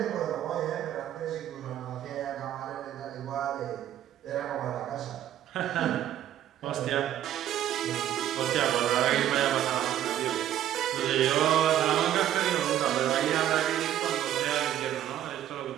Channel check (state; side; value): quieter; left; 11.7 dB